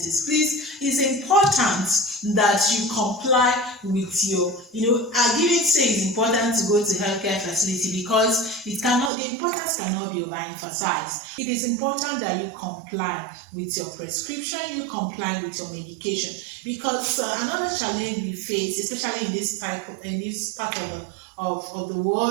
please, it's important that you comply with your, I didn't say it's important to go to healthcare facility, because the importance cannot be overemphasized. It is important that you comply with your prescription, you comply with your medication, because another challenge we face, especially in this part of the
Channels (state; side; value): drops out; left; at 9.1 s